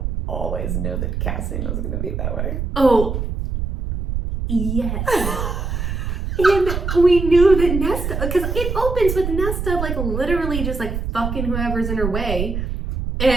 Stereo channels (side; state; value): right; noise; rumble, 3 dB below the sound